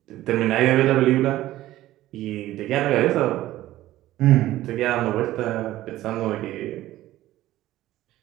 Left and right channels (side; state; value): left; quieter; 15.1 dB